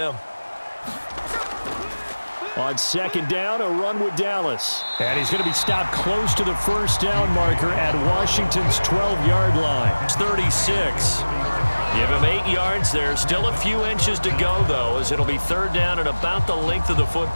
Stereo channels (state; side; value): inverted; both; correlation -1.00